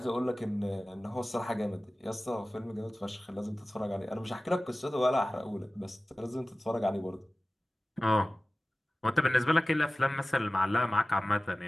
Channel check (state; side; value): normal; both; correlation 0.97